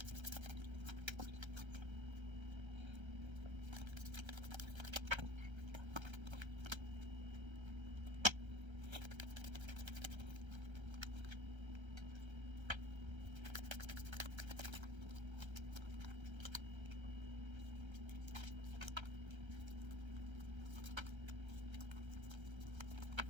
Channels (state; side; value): late; left; 1.3 ms